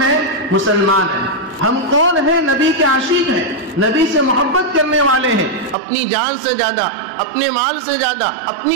ہیں، مسلمان ہیں، ہم کون ہیں، نبی کے عاشق ہیں، نبی سے محبت کرنے والے ہیں، اپنی جان سے زیادہ، اپنے مال سے زیادہ،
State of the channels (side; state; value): left; drops out; at 5.8 s